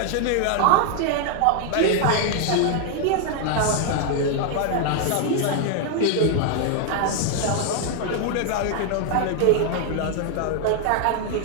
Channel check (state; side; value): different; both; correlation 0.00